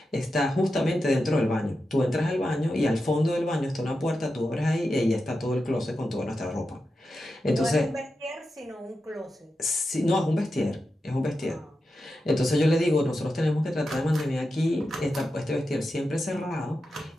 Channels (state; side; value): normal; both; correlation 0.90